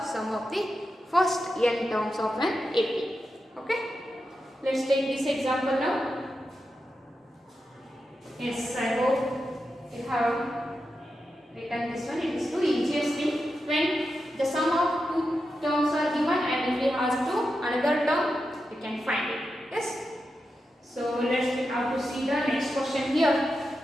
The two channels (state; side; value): normal; both; correlation 0.89